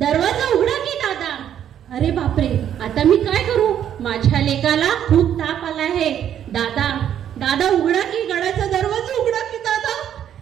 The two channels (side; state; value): left; quieter; 10.0 dB